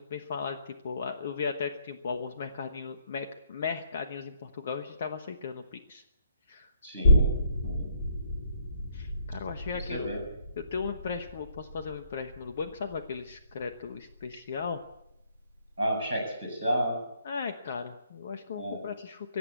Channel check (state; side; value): inverted; both; correlation -0.69